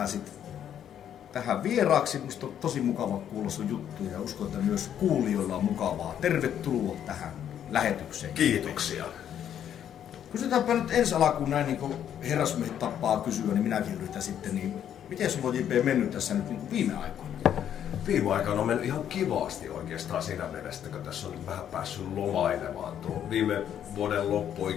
tähän vieraaksi. Musta on tosi mukava kuulla sun juttuja ja uskon, että myös kuulijoilla on mukavaa. Tervetuloa tähän lähetykseen. Kiitoksia. Kysytäänpä nyt ensi alkuun näin, niin kuin herrasmiehet tappaa kysyä, niin minäkin yritän sitten. Niin miten sulla on, J.P., mennyt tässä nyt niin viime aikoina? Viime aikoina on mennyt ihan kivasti oikeastaan siinä mielessä, kun tässä on nyt vähän päässyt lomailemaan. Tuo viime vuoden loppu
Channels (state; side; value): quieter; right; 9.8 dB